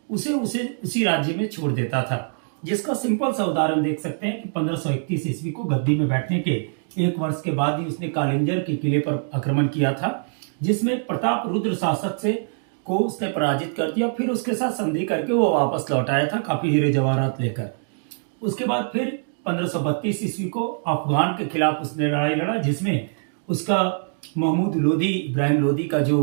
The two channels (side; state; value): left; silent; digital silence